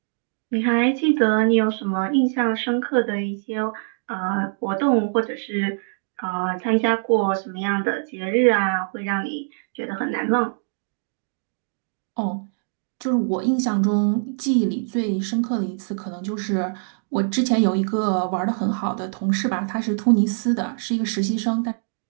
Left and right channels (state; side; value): silent; left; digital silence